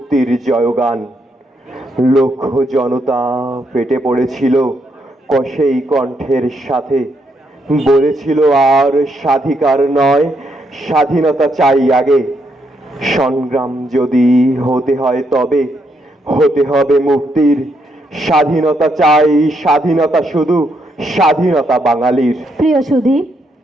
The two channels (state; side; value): normal; both; correlation 0.77